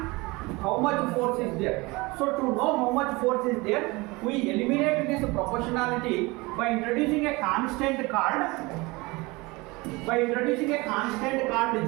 how much force is there. So to know how much force is there, we eliminate this proportionality by introducing a constant called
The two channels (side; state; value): left; quieter; 23.9 dB